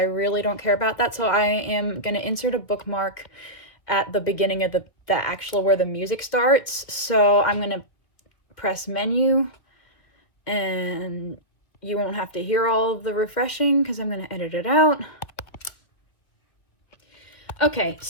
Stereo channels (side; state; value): right; late; 2.1 ms